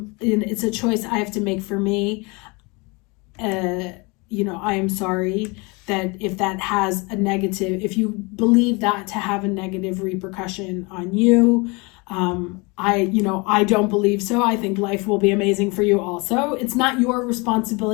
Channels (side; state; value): right; quieter; 28.0 dB